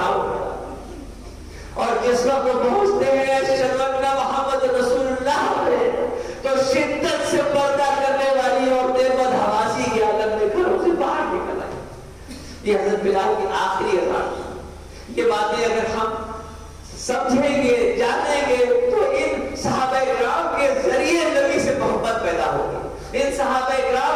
ہوا، اور جس وقت پہنچتے ہیں اشہد ان محمد رسول اللہ میں تو شدت سے پردہ کرنے والی عورتیں بدحواسی کے عالم میں گھروں سے باہر نکل آئی۔ یہ حضرت بلال کی آخری اذان، یہ باتیں اگر ہم سمجھیں گے جانیں گے تو ان صحابہ کرام کے ذریعے نبی سے محبت پیدا ہوگی، ان صحابہ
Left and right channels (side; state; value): both; identical; correlation 1.00